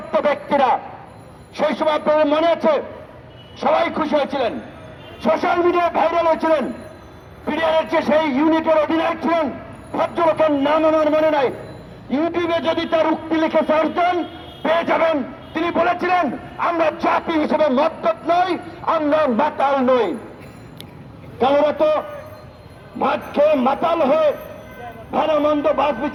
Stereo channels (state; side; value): identical; both; correlation 1.00